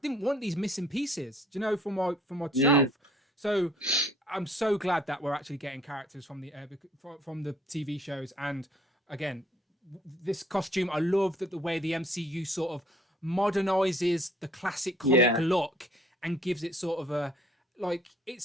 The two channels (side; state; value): both; normal; correlation 0.58